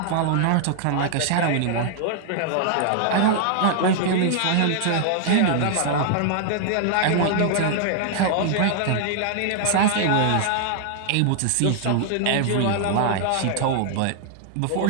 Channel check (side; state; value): both; different; correlation -0.01